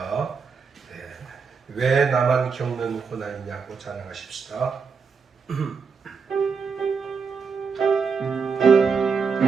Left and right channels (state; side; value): quieter; left; 5.6 dB